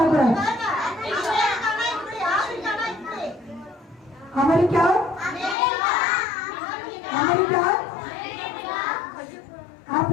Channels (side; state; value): right; drops out; at 5.6 s